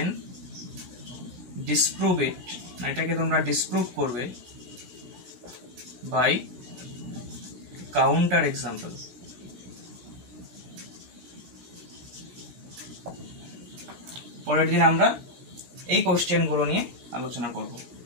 ডিসপ্রুভ ইট, এটাকে তোমরা ডিসপ্রুভ করবে বাই কাউন্টার এক্সাম্পল। পরের দিন আমরা এই কোশ্চেনগুলো নিয়ে আলোচনা করব।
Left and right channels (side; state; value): left; late; 16 ms